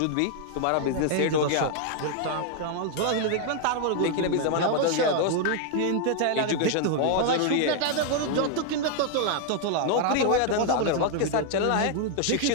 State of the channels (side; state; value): both; different; correlation 0.00